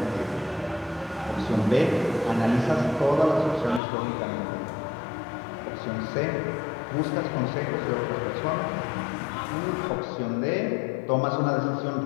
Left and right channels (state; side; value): drops out; right; at 3.8 s